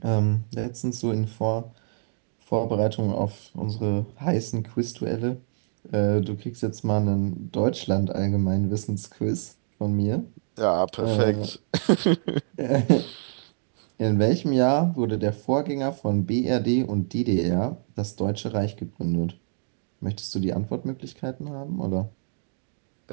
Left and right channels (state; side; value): silent; left; digital silence